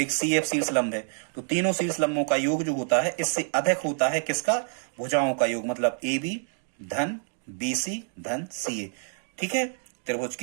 CF शीर्ष लंब है, तो तीनों शीर्ष लंबों का योग जो होता है इससे अधिक होता है किसका? भुजाओं का योग, मतलब AB धन BC धन CA। ठीक है, त्रिभुज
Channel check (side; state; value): left; silent; 60 dB below the other